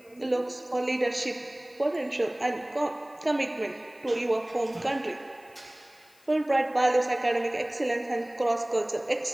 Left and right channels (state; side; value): noise; left; hiss, 29 dB below the sound